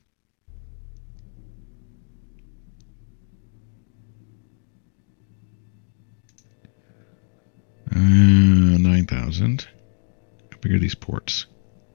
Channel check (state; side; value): silent; right; digital silence